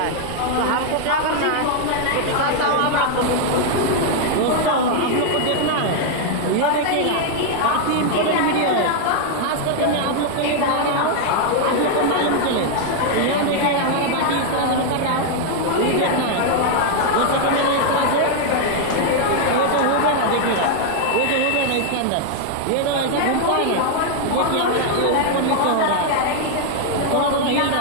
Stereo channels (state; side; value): different; both; correlation 0.00